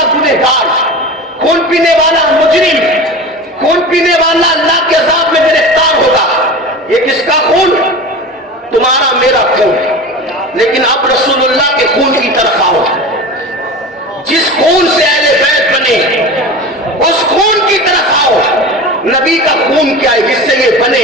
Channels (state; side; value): normal; both; correlation 0.32